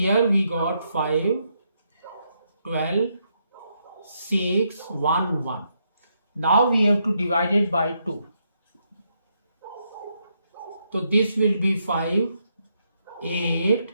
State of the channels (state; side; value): inverted; both; correlation -0.78